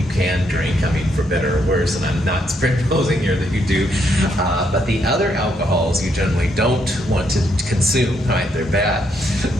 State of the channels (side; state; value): both; normal; correlation 0.75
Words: drink, for better or worse, and I'm not proposing here that you do, but the other alcohols you generally don't want to consume, right? They're bad.